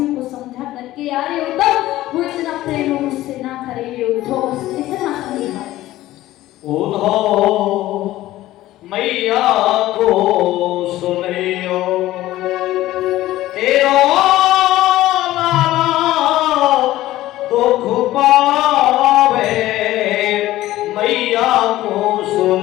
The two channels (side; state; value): right; quieter; 15.6 dB